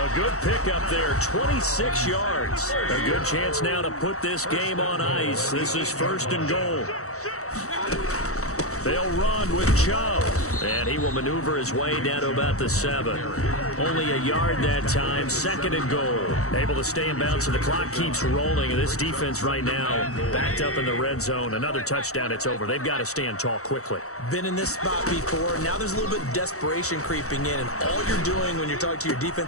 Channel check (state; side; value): late; right; 0.64 ms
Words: good pickup there, 26 yards. A good chance now to put this game on ice. This is 1st and goal. They'll run with Chubb, and he will maneuver his way down to about the 7. Only a yard that time, 2nd and goal. Able to stay in bounds, so the clock keeps rolling, and this defense right now backed up in the red zone. Another touchdown, it's over. They've got to stand tall quickly. Been in this spot before. Now there's a little bit of desperation creeping in, and all you're doing when you're talking to your